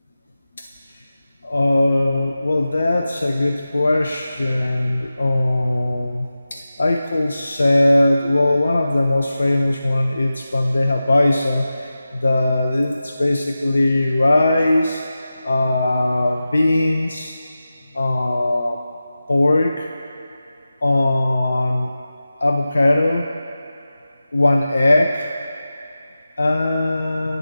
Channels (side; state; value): both; inverted; correlation -0.94